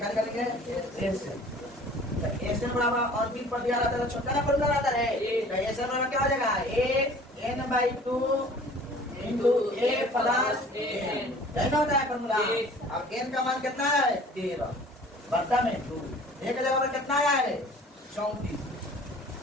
निकालेंगे? a से। तो a से बराबर अंतिम पर दिया रहता है, छोटा ना फॉर्मूला रहता है, तो a से बराबर क्या हो जाएगा? a n/2 into a plus n, यही ना होता है फॉर्मूला। अब n का मान कितना है 13 बट्टा में 2 एक जगह पर कितना आया है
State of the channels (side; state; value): both; normal; correlation 0.48